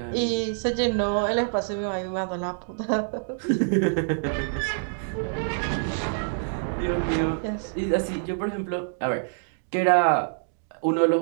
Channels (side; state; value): left; silent; digital silence